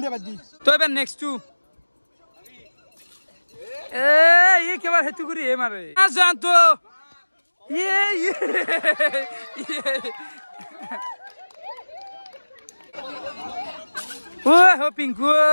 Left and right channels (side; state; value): both; inverted; correlation -1.00